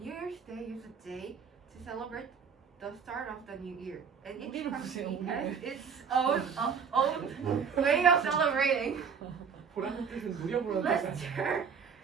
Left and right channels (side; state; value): left; quieter; 6.4 dB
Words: Year's Day is a day to celebrate the start of the new year, and each country has its own way of celebrating. Let's turn